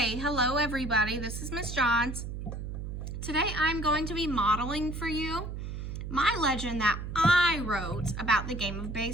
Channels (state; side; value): noise; right; hum, 6 dB below the sound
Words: hello everybody. This is Miss Johns. Today I'm going to be modeling for you my legend that I wrote about the game of